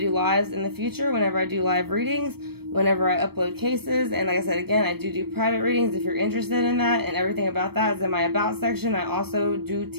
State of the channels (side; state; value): left; late; 0.96 ms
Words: lives in the future, whenever I do live readings, whenever I upload cases. And like I said, again, I do private readings if you're interested in that, and everything about that is in my About section. I also do